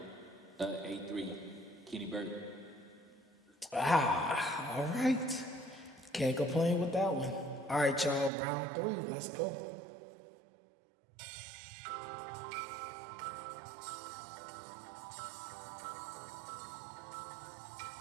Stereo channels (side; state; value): left; drops out; at 8.3 s